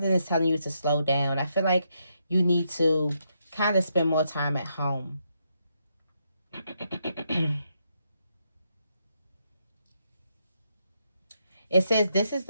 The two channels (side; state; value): both; inverted; correlation -0.79